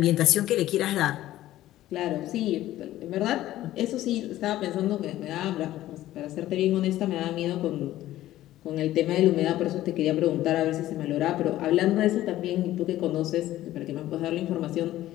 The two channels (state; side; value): quieter; right; 14.5 dB